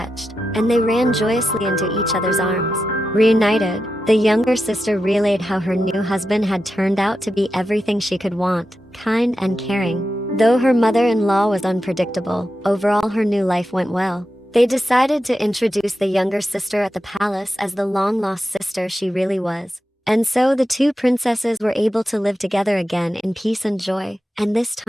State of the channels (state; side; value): normal; both; correlation 0.90